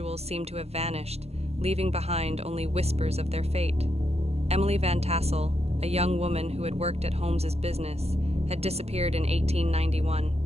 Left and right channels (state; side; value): late; left; 0.30 ms